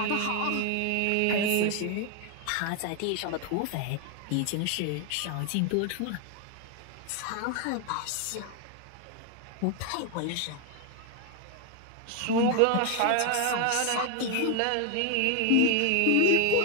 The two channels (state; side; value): different; both; correlation 0.01